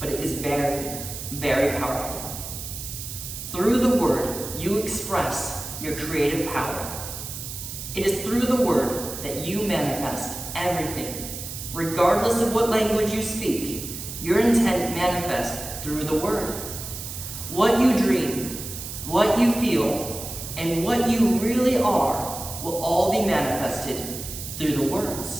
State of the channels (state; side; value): noise; right; hiss, 9 dB below the sound